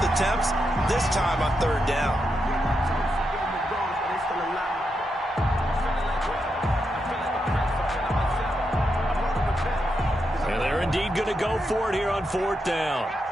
attempts, this time on 3rd down. And they're indeed going to go for it here on 4th down.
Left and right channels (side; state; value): both; normal; correlation 0.84